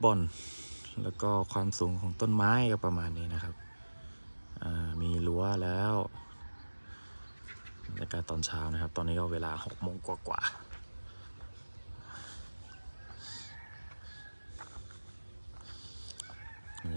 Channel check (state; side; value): inverted; both; correlation -1.00